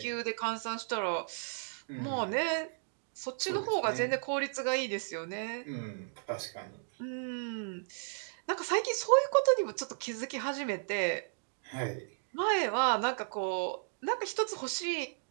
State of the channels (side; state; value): left; silent; digital silence